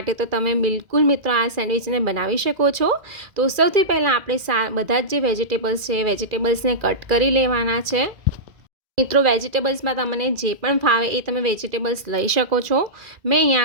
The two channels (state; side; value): late; left; 2.0 ms